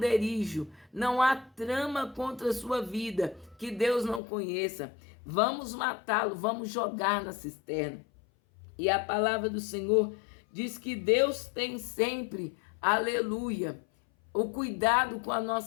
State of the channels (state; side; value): drops out; right; at 4.2 s